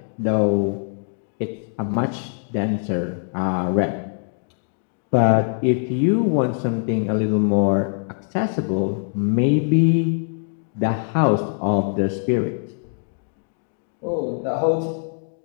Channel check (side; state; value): right; silent; digital silence